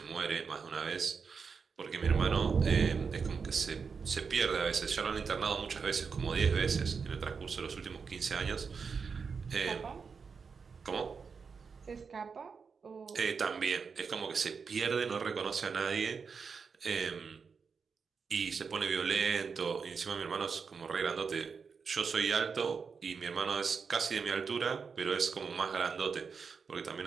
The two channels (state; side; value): quieter; left; 5.6 dB